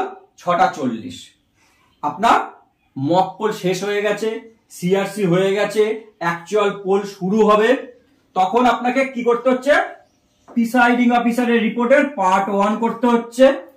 6:40 আপনার মকপল শেষ হয়ে গেছে, সিআরসি হয়ে গেছে, অ্যাকচুয়াল পোল শুরু হবে। তখন আপনাকে কি করতে হচ্ছে, প্রিসাইডিং অফিসারের রিপোর্টের পার্ট 1 করতে হচ্ছে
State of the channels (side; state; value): both; identical; correlation 1.00